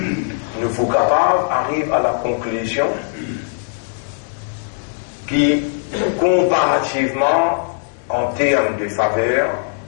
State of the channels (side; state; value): right; silent; digital silence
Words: Nous faut capables arrive à la conclusion qui comparativement en termes de faveur